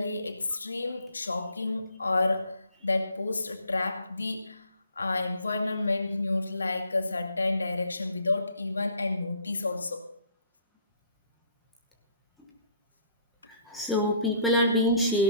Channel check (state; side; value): inverted; both; correlation -0.59